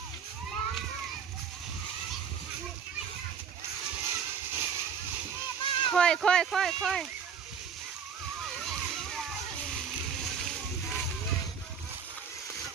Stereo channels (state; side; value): quieter; left; 6.9 dB